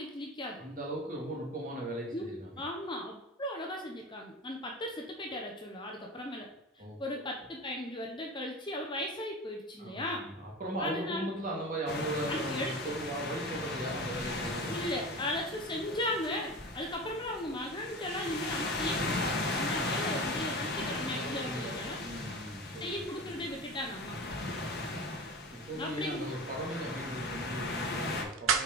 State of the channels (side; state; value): both; normal; correlation 0.31